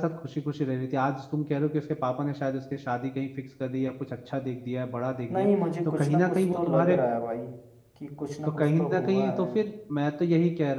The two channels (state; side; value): identical; both; correlation 1.00